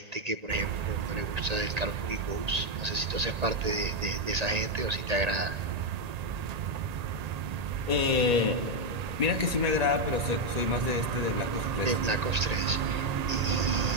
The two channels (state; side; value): late; left; 1.8 ms